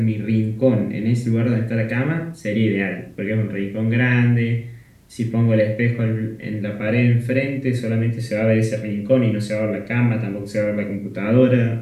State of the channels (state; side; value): identical; both; correlation 1.00